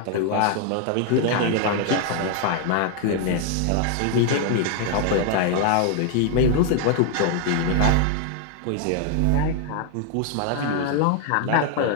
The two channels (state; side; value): different; both; correlation 0.00